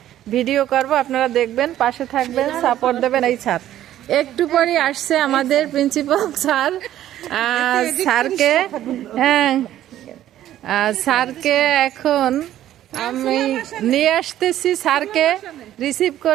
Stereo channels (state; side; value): quieter; left; 12.5 dB